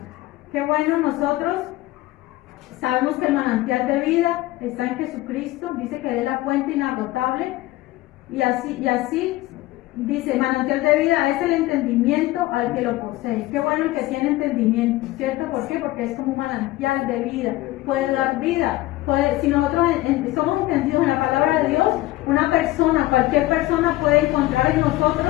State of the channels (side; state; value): right; quieter; 17.5 dB